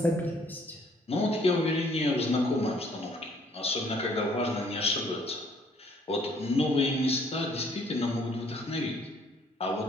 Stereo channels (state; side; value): normal; both; correlation 0.62